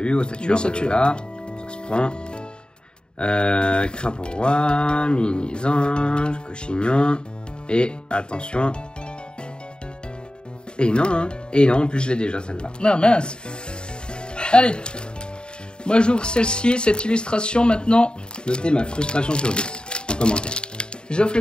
Ossature, là. Ça se prend. Crapaud Roi, Mini-Ange, Cochignon. Et attention. Et non, en plus je l'ai déjà celle-là. Non, mince. Allez. Moi j'ouvre celle-ci, cette illustration maintenant. Notez ma frustration sur 10 en commentaire. J'offre le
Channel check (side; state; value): right; late; 0.050 ms